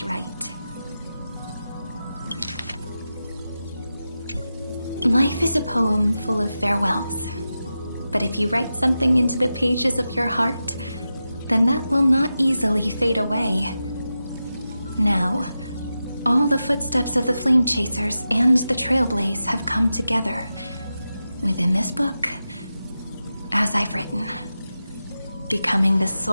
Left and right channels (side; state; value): both; inverted; correlation -0.91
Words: right. Life is a poem full of farewells. But if you write something into the pages of your heart, then that will not easily fade away. Now, all the footsteps of the Flame Chasers and the Trailblaze have come together within this book, as I've written, becoming the